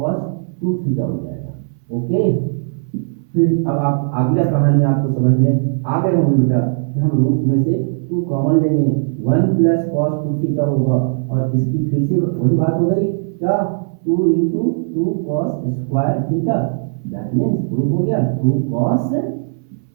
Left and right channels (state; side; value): silent; left; 66 dB below the other